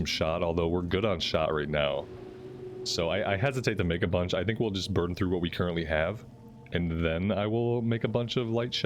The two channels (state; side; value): identical; both; correlation 1.00